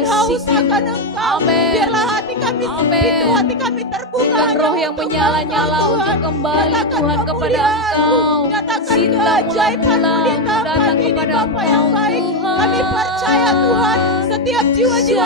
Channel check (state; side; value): normal; both; correlation 0.06